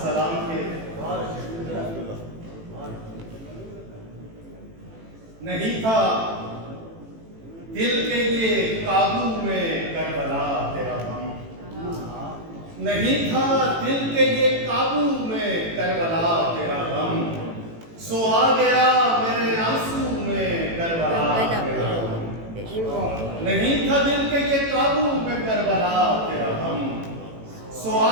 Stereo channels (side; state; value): left; late; 18 ms